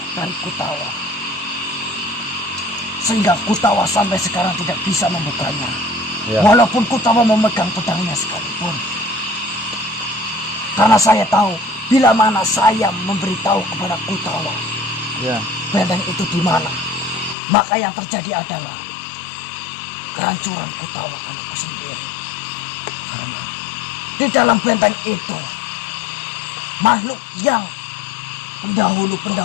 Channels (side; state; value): right; drops out; at 17.4 s